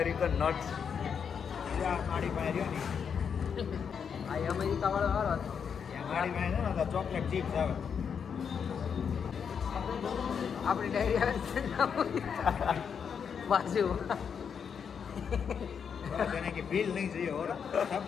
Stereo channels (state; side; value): quieter; right; 7.0 dB